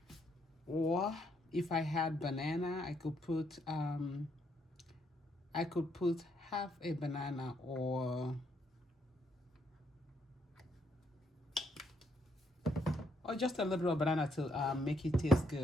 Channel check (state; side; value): normal; both; correlation 0.73